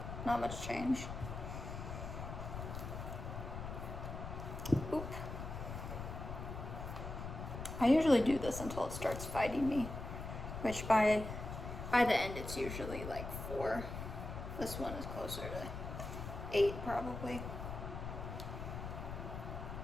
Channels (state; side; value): noise; left; rumble, 7 dB below the sound